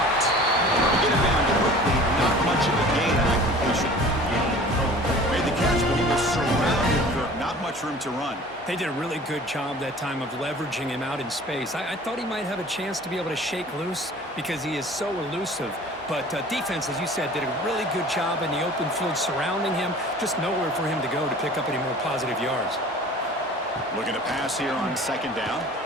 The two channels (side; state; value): both; normal; correlation 0.45